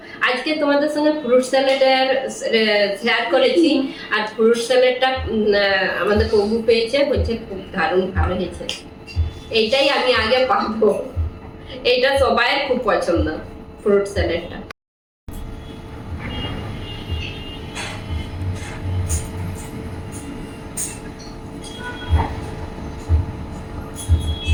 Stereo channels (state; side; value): identical; both; correlation 1.00